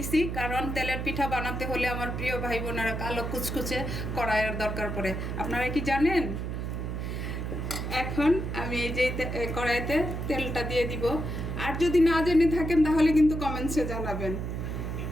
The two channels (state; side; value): noise; right; hum, 4 dB below the sound